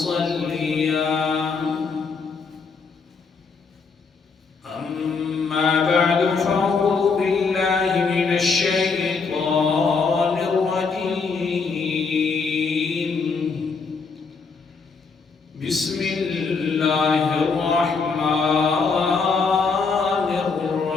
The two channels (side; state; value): right; quieter; 4.8 dB